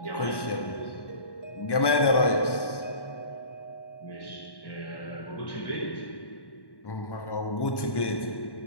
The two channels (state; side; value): late; right; 1.1 ms